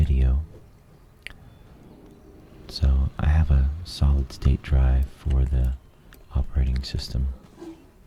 So I have a solid state drive for the operating system,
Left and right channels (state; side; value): identical; both; correlation 1.00